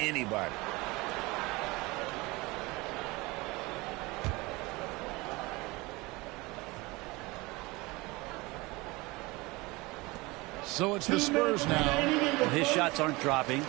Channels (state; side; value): quieter; left; 23.1 dB